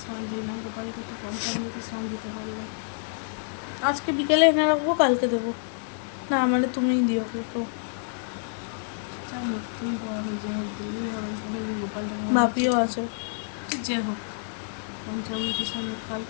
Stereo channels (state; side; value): silent; right; digital silence